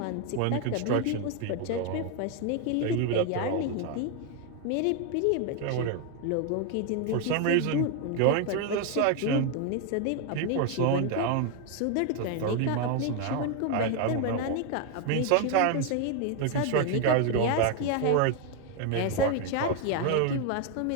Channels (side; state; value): both; different; correlation 0.01